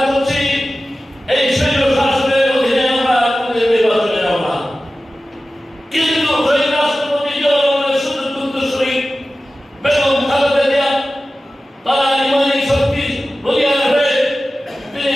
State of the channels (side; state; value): both; normal; correlation 0.95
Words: করছি এই শৈল শাসনের অধীনে আমরা নির্বাচনে যাব না। কিন্তু ওই রাষ্ট্রপতি জিয়াউর রহমানের সুযোগ উত্তরসূরি বেগম খালেদা জিয়া তারা ইমানি শক্তি বলিয়ান হয়ে তিনি